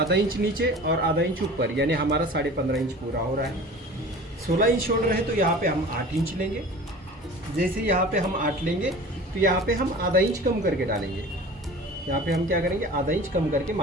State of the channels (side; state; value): both; normal; correlation 0.40